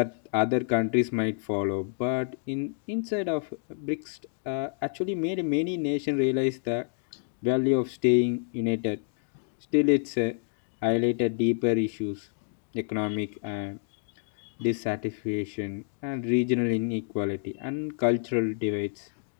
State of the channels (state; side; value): silent; right; digital silence